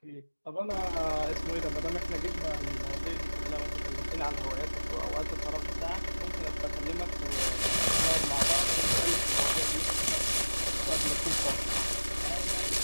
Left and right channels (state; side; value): inverted; both; correlation -1.00